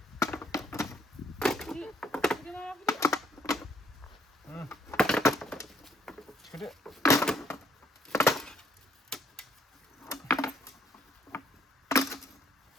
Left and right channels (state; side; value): normal; both; correlation 0.65